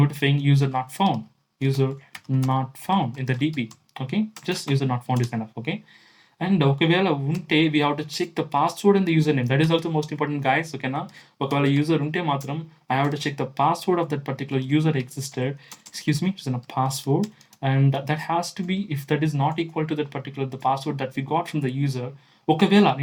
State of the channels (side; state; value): both; identical; correlation 1.00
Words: user not found, user not found in the DB. Okay, just user not found is enough. Okay, and ఒకవేళ ఉంటే we have to check the password and the username. That is also most important, guys. ఓకేనా, ఒకవేళ user ఉంటే మాత్రం I have to check the password of that particular user existed. Excuse me, it's a password, and that has to be, if that is not equal to that particular the password that we got from the user. ఒకవేళ